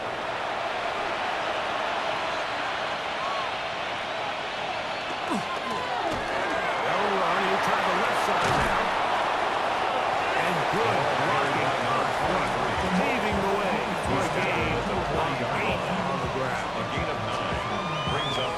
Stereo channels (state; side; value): identical; both; correlation 1.00